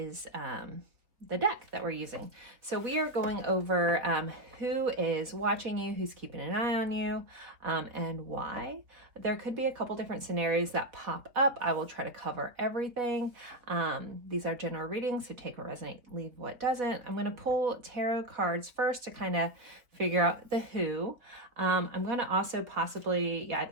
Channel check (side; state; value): left; late; 3.6 ms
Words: the deck that we're using. So we are going over who is watching you, who's keeping an eye on you, and why. There could be a couple different scenarios that pop up. I will try to cover everything. These are general readings, so take what resonates, leave what doesn't. I'm going to pull tarot cards first to kind of figure out the who. I'm going to also possibly, I